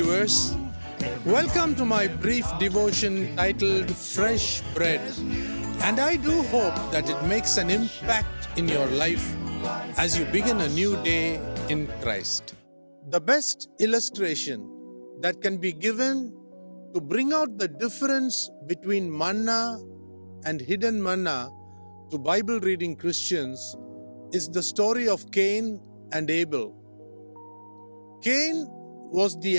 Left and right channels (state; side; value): inverted; both; correlation -1.00